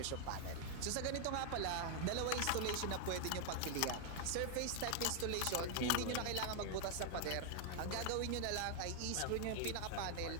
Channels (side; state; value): both; different; correlation 0.00